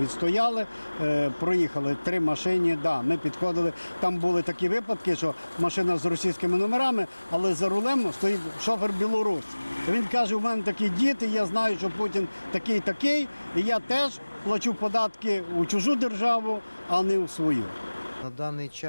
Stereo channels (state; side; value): inverted; both; correlation -1.00